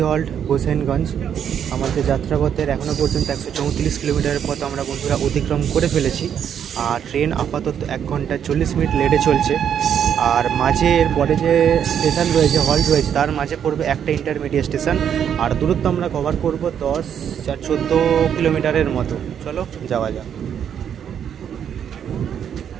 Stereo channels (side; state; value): left; quieter; 8.7 dB